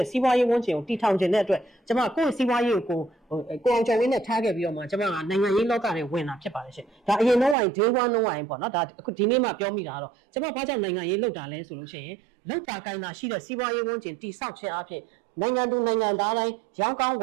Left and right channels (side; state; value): left; drops out; at 7.6 s